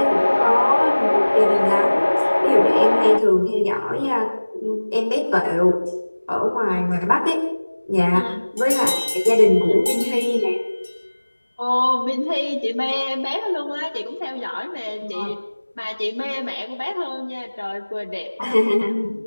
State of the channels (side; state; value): both; inverted; correlation -1.00